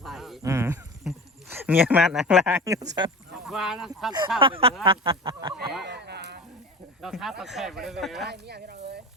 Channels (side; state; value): both; normal; correlation 0.34